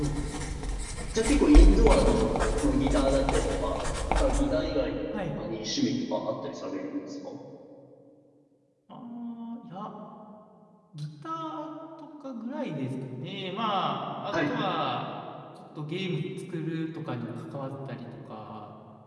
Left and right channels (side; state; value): both; identical; correlation 1.00